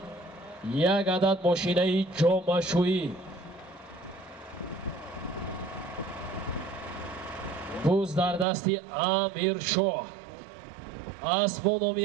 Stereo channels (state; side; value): drops out; left; at 8.5 s